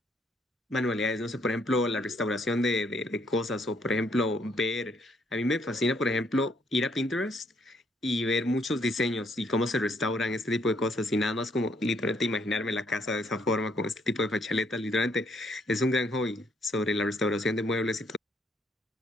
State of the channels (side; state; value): both; normal; correlation 0.69